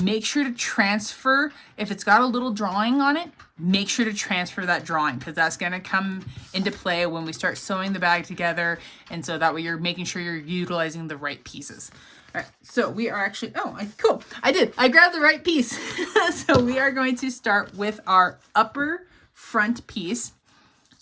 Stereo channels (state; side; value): identical; both; correlation 1.00